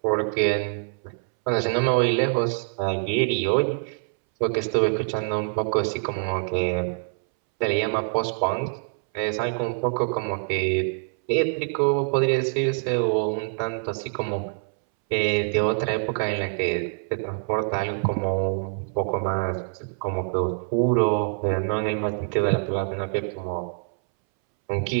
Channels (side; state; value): left; silent; 62 dB below the other